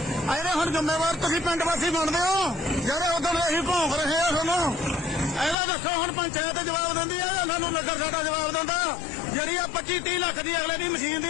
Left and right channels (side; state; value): right; drops out; at 5.6 s